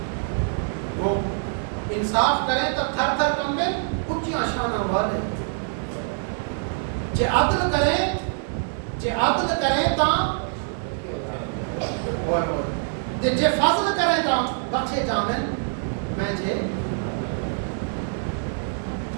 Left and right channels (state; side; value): silent; left; 62 dB below the other